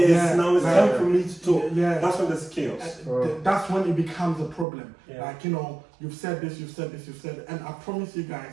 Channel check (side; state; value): left; drops out; at 4.7 s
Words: Now it's time for me to talk. That's when there's chaos. That's when it becomes a problem. You've said this, you've said, and I promise you